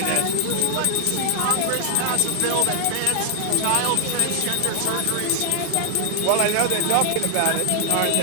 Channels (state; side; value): different; both; correlation 0.00